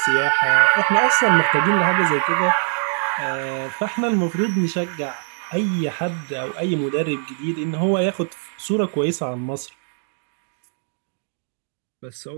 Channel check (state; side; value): silent; left; digital silence